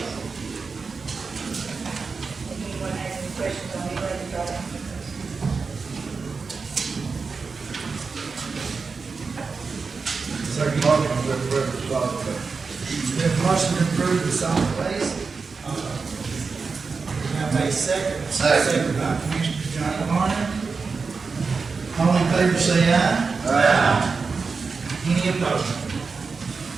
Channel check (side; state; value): left; quieter; 4.7 dB